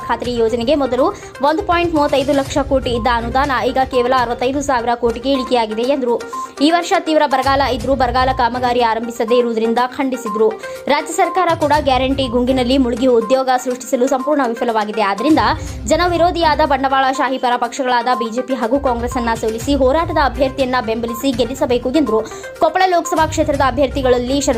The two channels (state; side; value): identical; both; correlation 1.00